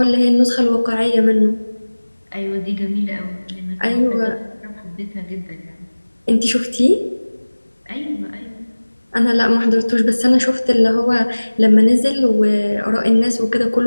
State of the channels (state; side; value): inverted; both; correlation -1.00